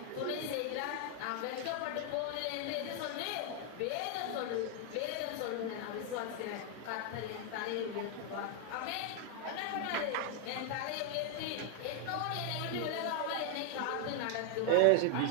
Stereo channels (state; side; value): different; both; correlation 0.00